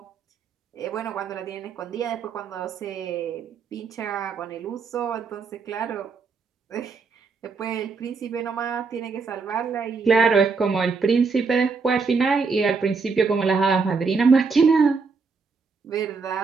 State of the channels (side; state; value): left; quieter; 4.8 dB